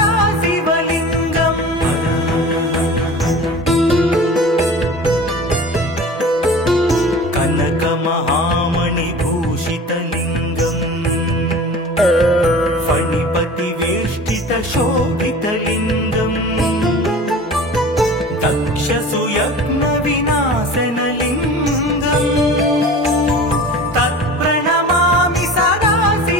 शिवलिङ्गम् कनकमहामणिभूषितलिङ्गम् फणिपतिवेष्टितशोभितलिङ्गम् दक्षसुयज्ञविनाशनलिङ्गम् तत्प्रणमामि सदा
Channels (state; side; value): normal; both; correlation 0.38